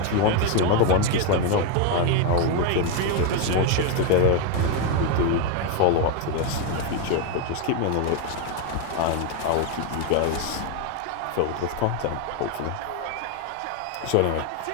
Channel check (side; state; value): both; different; correlation 0.01